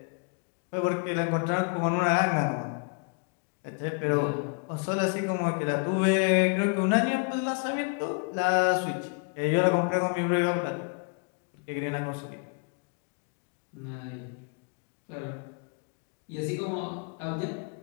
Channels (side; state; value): right; quieter; 38.0 dB